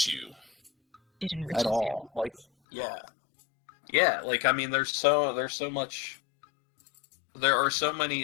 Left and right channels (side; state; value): right; drops out; at 2.5 s